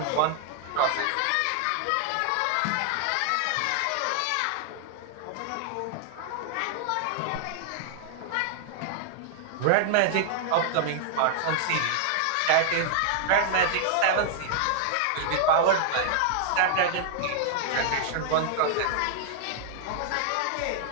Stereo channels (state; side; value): different; both; correlation -0.01